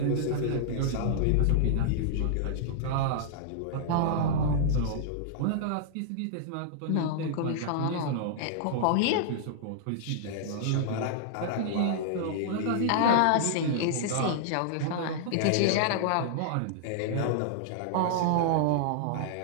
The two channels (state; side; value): different; both; correlation -0.01